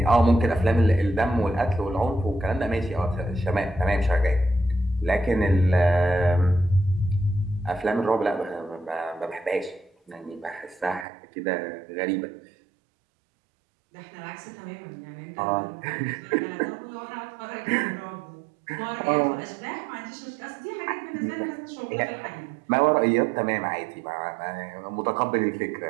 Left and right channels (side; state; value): left; drops out; at 11.1 s